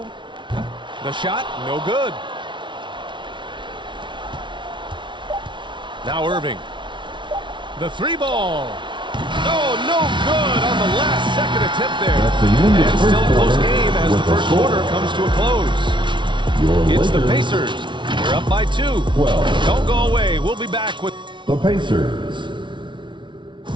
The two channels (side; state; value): left; late; 0.24 ms